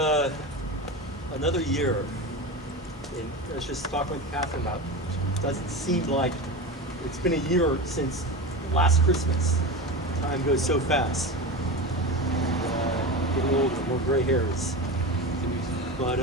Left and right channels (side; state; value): both; normal; correlation 0.24